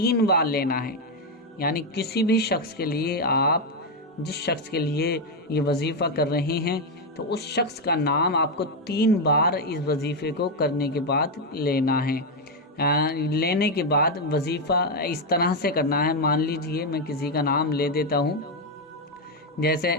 بار لینا ہے، یعنی کسی بھی شخص کے لیے آپ جس شخص کے لیے یہ وظیفہ کر رہے ہیں تو اس شخص کا نام آپ کو 3 بار اس وظیفے کو کرنے کے بعد لینا ہے۔ لینے کے بعد وظیفہ اس طرح سے کرنا ہے، مان لیجئے میں کسی کا نام لے دیتا ہوں، جیسے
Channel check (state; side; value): normal; both; correlation 0.04